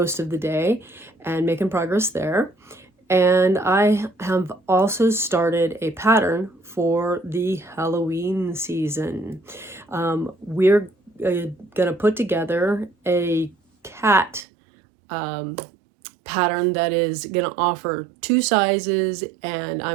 of the day and making progress there. And I have also started a pattern for the Halloween season. We're gonna put together a cat pattern that is going to offer two sizes, and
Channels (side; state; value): left; drops out; at 14.5 s